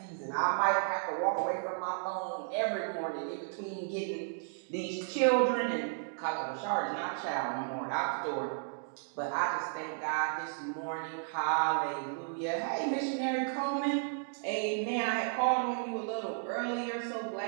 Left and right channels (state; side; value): silent; left; digital silence